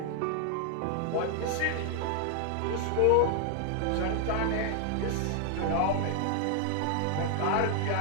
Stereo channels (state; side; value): different; both; correlation 0.00